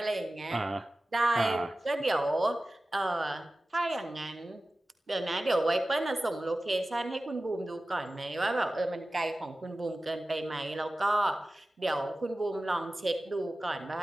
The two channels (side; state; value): both; normal; correlation 0.96